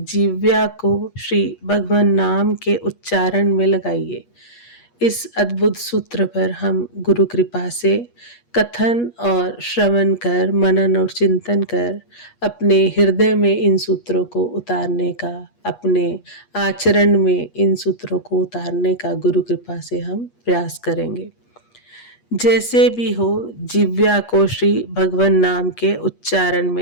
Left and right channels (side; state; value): right; late; 8.4 ms